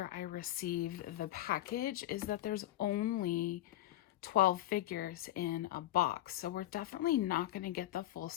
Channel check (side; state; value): right; quieter; 14.4 dB